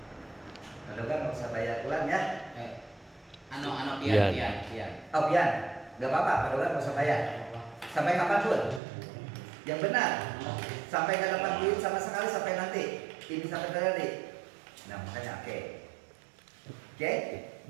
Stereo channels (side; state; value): left; drops out; at 8.8 s